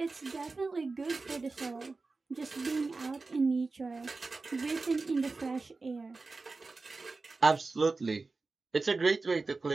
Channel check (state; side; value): quieter; left; 3.8 dB